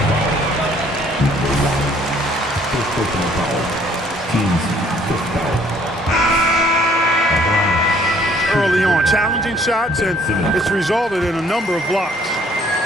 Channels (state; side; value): normal; both; correlation 0.61